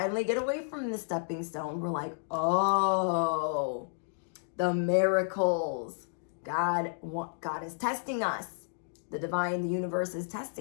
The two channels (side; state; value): right; silent; digital silence